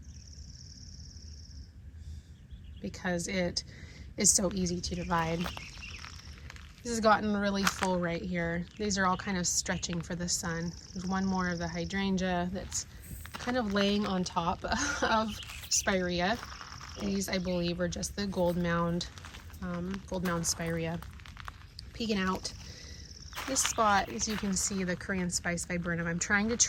it is so easy to divide. This has gotten really full right here. These are all kind of stretching for the sun. There's one more of the hydrangea that's kind of laying on top of spirea. These, I believe, are just the gold mound spirea peeking out. This spot, as you can see, the Korean spice viburnum, I'm trying to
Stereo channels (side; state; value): both; identical; correlation 1.00